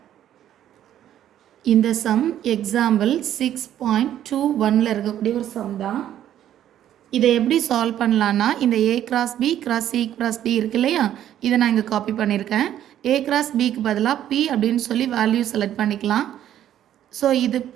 இந்த சம் எக்ஸாம்பிள் 6.21ல் இருக்கக்கூடிய ஒரு சம் தான். இதை எப்படி சால்வ் பண்ணலான்னா இந்த A cross B cross C cross D இருக்கு இல்லையா, இதை நான் இங்கே காப்பி பண்ணியிருக்கேன். A cross Bக்கு பதிலாக P அப்படின்னு சொல்லி வேல்யூ செலக்ட் பண்ணிக்கலாம். ஸோ இது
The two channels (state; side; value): quieter; left; 11.3 dB